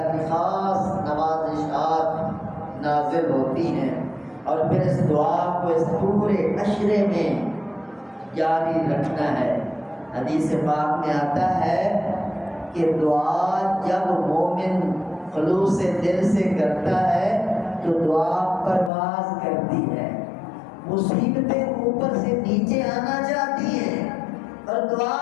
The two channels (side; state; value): right; drops out; at 18.9 s